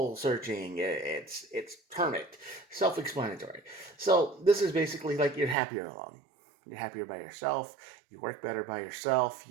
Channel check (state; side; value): drops out; left; at 5.6 s